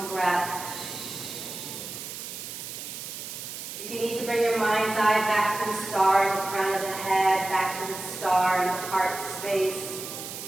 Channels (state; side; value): noise; right; hiss, 9 dB below the sound